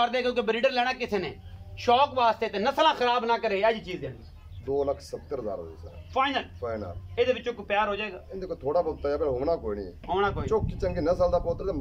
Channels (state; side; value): identical; both; correlation 1.00